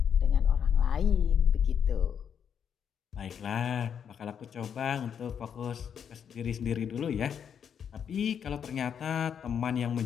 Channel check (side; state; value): right; quieter; 7.9 dB